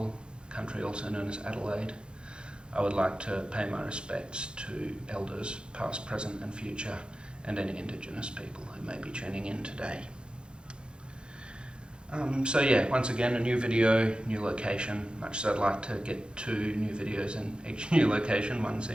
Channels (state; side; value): late; left; 0.052 ms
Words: country also known as Adelaide. I would like to pay my respects to elders past, present and future, and any Indigenous people who may be tuning in today. So yeah, once again a new video, new location, much as I'd like to get 2 new videos in each new location, one